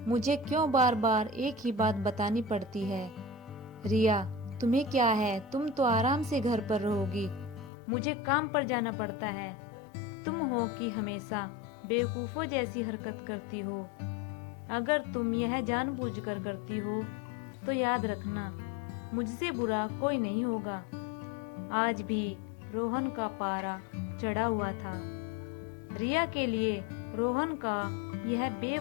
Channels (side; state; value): right; drops out; at 7.7 s